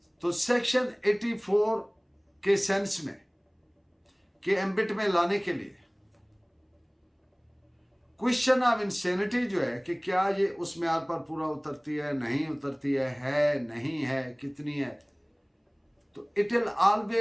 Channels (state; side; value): identical; both; correlation 1.00